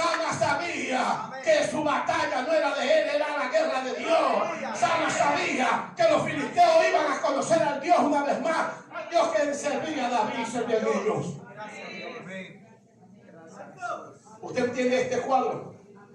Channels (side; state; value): both; identical; correlation 1.00